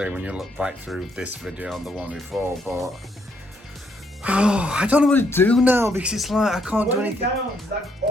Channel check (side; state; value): both; normal; correlation 0.73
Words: when you look back through this video and the one before, but oh, I don't know what to do now because it's like I can't do anything. Down, like